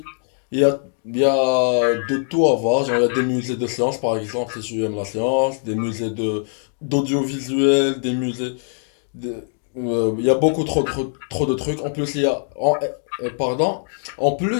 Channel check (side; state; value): right; silent; digital silence